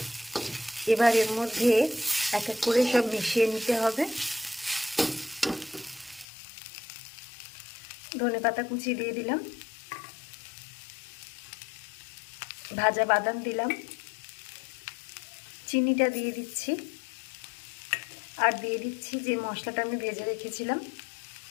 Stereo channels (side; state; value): right; drops out; at 6.2 s